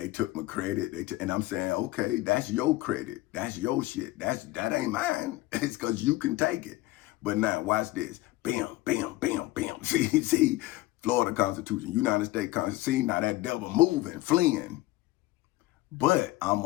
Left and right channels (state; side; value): quieter; right; 18.0 dB